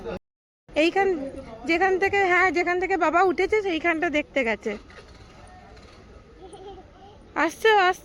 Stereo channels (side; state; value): both; identical; correlation 1.00